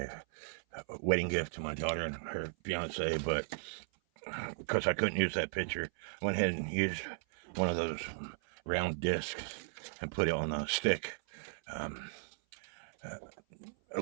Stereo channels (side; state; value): left; silent; 53 dB below the other